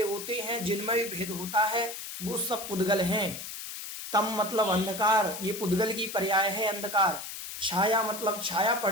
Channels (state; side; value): noise; left; hiss, 9 dB below the sound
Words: होते हैं, जिनमें भी भेद होता है, वो सब पुद्गल हैं। तम मतलब अंधकार, ये पुद्गल की पर्याय है, अंधकार। छाया मतलब छाया